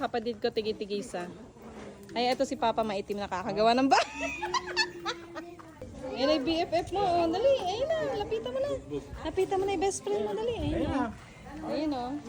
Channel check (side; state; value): both; identical; correlation 1.00